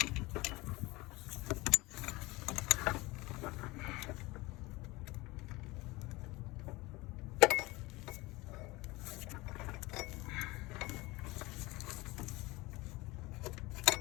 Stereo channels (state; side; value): quieter; right; 21.9 dB